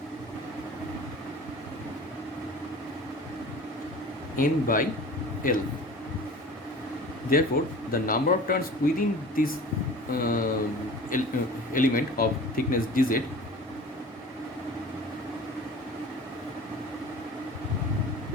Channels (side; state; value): both; normal; correlation 0.40